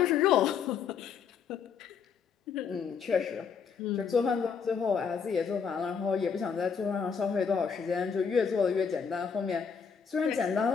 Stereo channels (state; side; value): quieter; right; 6.4 dB